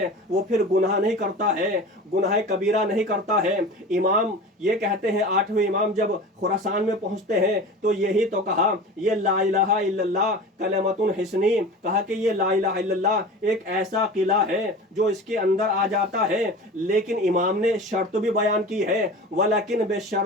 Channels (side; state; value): both; normal; correlation 0.35